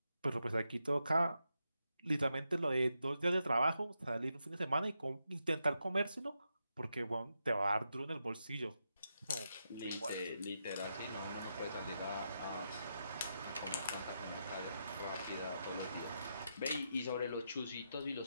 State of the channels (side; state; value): both; inverted; correlation -0.84